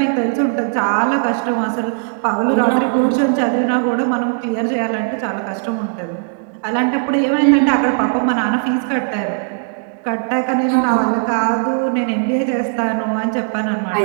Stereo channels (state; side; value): silent; left; 68 dB below the other